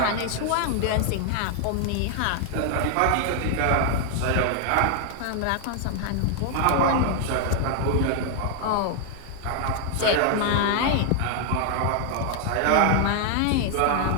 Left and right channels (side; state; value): both; different; correlation 0.00